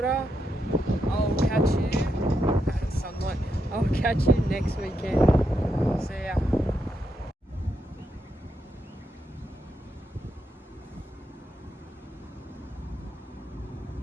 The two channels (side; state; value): both; normal; correlation 0.82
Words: I'll catch you, sunlight, I'll catch you next weekend. See ya.